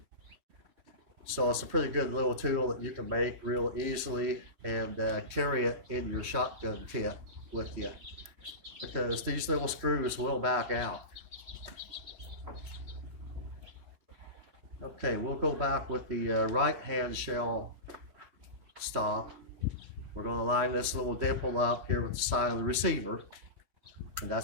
So it's a pretty good little tool that you can make real easily and carry it in your shotgun kit with you, because these little screws will back out. Okay, we'll go back with the right hand shell stop. We're going to line this little dimple up here with the side of the receiver, and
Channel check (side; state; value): left; late; 3.2 ms